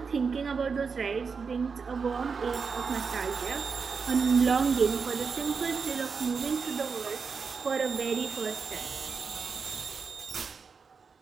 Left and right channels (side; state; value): left; quieter; 5.4 dB